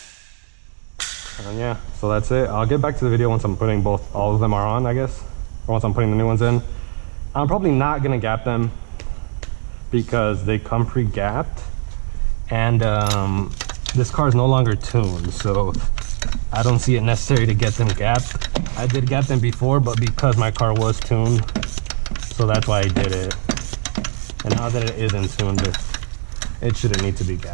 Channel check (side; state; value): left; silent; digital silence